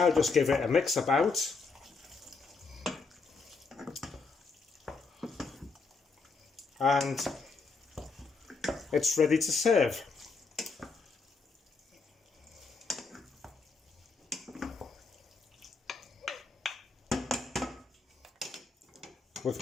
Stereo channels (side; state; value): right; quieter; 4.4 dB